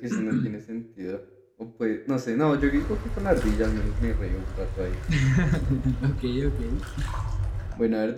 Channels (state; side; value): identical; both; correlation 1.00